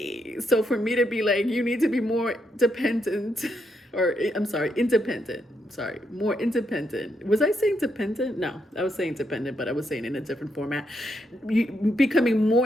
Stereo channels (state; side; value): normal; both; correlation 0.79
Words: So for me to be like, you need to be more dependent, or independent. More independent. Was I saying dependent? No, I was saying dependent, but I was saying in a different format. You becoming